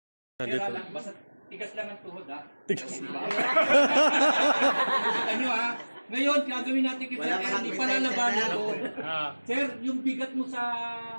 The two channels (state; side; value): inverted; both; correlation -1.00